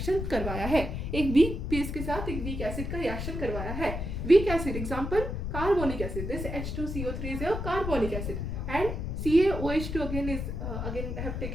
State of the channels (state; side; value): noise; left; rumble, 4 dB below the sound